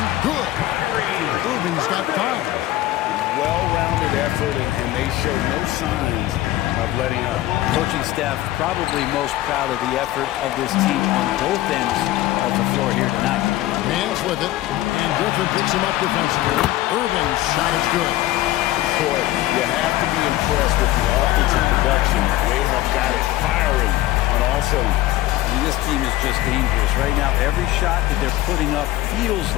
good. Irving's got 5. Well-rounded effort, and they show no signs of letting up. Coaching staff probably most proud of the effort of this team on both ends of the floor here tonight. Man's with it, and Griffin picks him up defensively. Irving's shot is good. Boy, you have to be impressed with the offensive production. They have got it firing on all cylinders. I mean, this team is just dangerous. Right now, every shot that they're putting up feels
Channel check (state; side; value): quieter; right; 15.7 dB